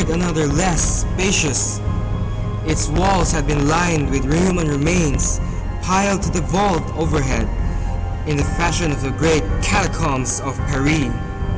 another less spacious. Its walls had been lined with human remains, piled to the vault overhead, in the fashion of the great catacombs of Paris.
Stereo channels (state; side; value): identical; both; correlation 1.00